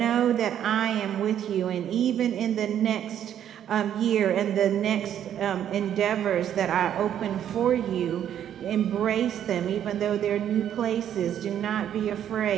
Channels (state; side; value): quieter; left; 10.1 dB